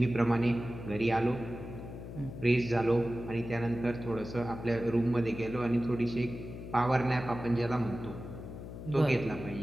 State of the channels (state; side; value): noise; left; hum, 10 dB below the sound